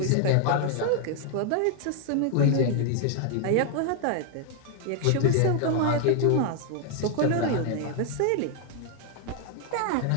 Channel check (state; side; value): different; both; correlation 0.00